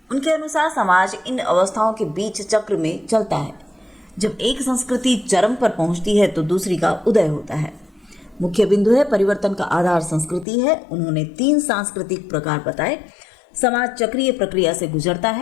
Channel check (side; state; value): right; drops out; at 10.5 s